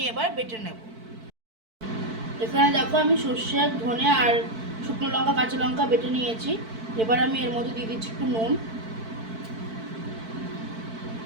এবার বেটে নেব। এখানে দেখো আমি সর্ষে, ধনে আর শুকনো লঙ্কা, কাঁচা লঙ্কা বেটে নিয়েছি। এবার আমি এর মধ্যে দিয়ে দিচ্ছি একটু নুন,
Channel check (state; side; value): late; left; 4.5 ms